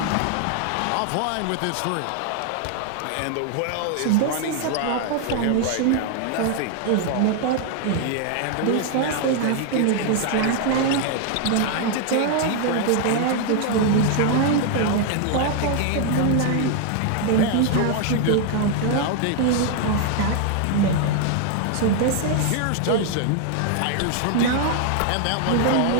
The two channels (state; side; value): different; both; correlation 0.00